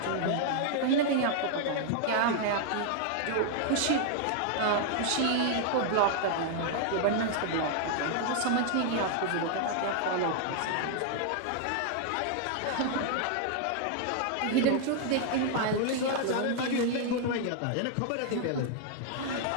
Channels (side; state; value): both; different; correlation 0.00